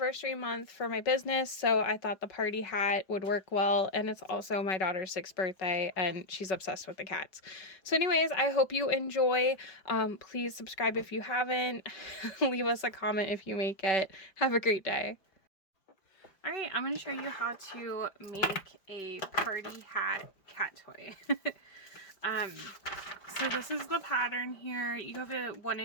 month for my business, so I thought the party hat would work well, and it's also my daughter's 6th birthday, and she's obsessed with the cats. So anyways, I hope you enjoy. Please subscribe if you haven't. Leave us a comment if you make it. Have a great day. Alright, I'm going to show you how to make a party hat cat toy. So this is the pattern here. You have a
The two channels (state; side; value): late; right; 5.3 ms